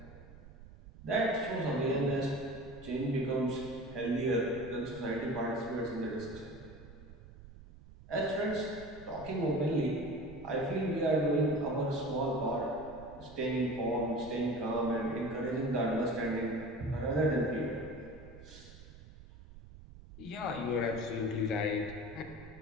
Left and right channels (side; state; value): right; noise; rumble, 18 dB below the sound